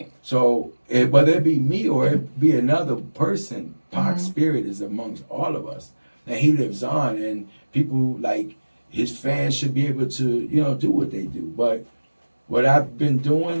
So whether it be me or it be another person, Pac's spirit is amongst all of us, and he lives on. And people like his fans should be able to, do what they do. But what I've been doing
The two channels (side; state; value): both; inverted; correlation -1.00